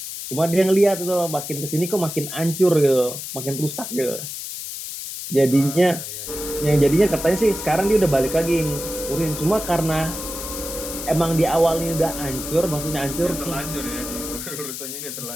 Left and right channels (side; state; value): left; noise; hiss, 8 dB below the sound